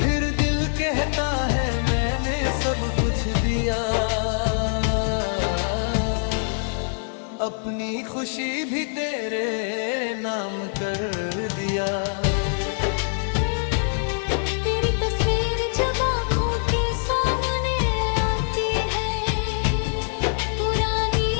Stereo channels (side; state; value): right; silent; digital silence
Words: फिर दिल कहता है मैंने सब कुछ दिया, अपनी खुशी भी तेरे नाम कर दिया। तेरी तस्वीर जब आँखों के सामने आती है, पुरानी